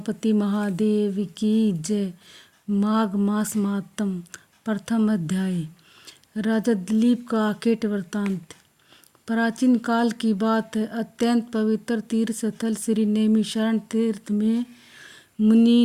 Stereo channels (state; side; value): identical; both; correlation 1.00